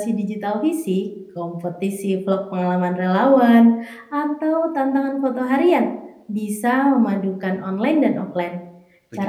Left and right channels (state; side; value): identical; both; correlation 1.00